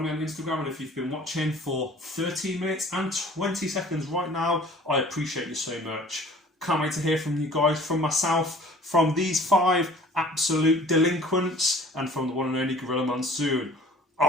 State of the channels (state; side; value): normal; both; correlation 0.49